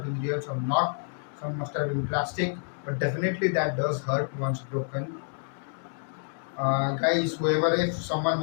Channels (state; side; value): silent; right; digital silence